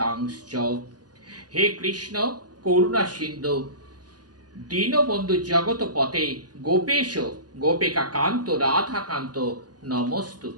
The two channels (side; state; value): left; late; 0.69 ms